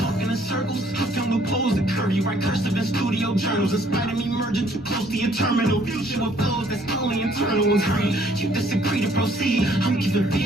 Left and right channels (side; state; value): both; normal; correlation 0.63